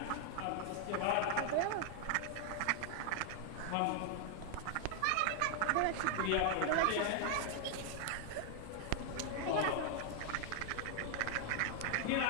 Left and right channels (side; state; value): both; different; correlation 0.00